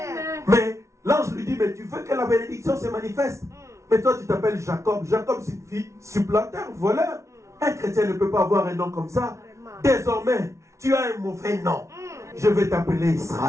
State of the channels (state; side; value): late; left; 0.14 ms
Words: Mais l'ange lui dit, mais tu veux que la bénédiction se manifeste? Mais toi tu t'appelles Jacob. Jacob signifie supplanteur, voleur. Un chrétien ne peut pas avoir un nom comme ça. Désormais, tu as un mauvais nom. Je vais t'appeler